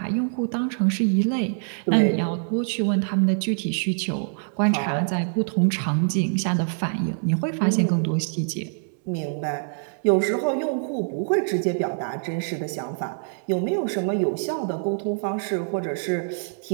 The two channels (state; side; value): silent; left; 62 dB below the other